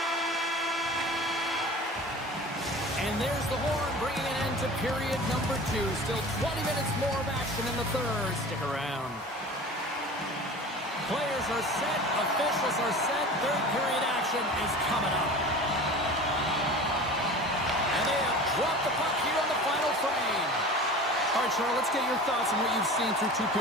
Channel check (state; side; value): normal; both; correlation 0.38